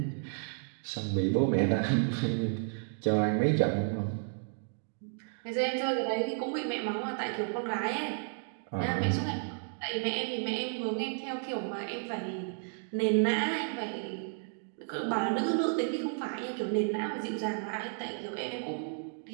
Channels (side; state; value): left; silent; 56 dB below the other